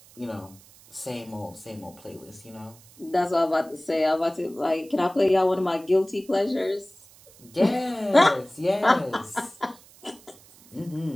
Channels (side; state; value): right; noise; hiss, 24 dB below the sound